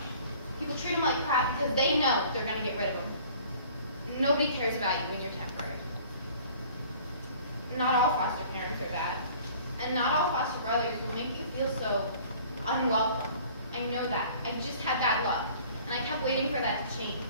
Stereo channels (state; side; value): inverted; both; correlation -0.50